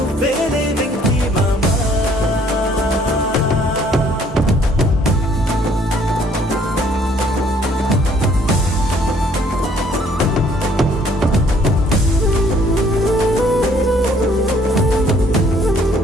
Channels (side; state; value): both; normal; correlation 0.61